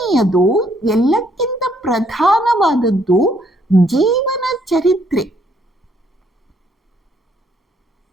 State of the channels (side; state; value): both; normal; correlation 0.68